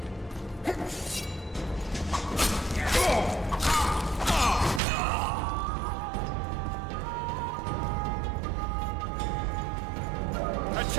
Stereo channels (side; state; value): left; drops out; at 4.8 s